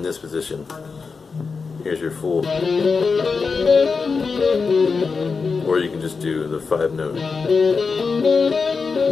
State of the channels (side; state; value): right; quieter; 4.9 dB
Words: this position. Here's your full, or you can just do the 5-note.